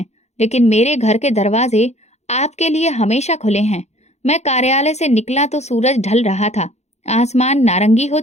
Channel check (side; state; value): right; late; 0.32 ms